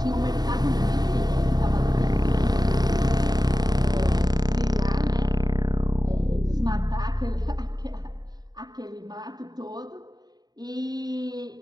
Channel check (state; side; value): late; left; 0.19 ms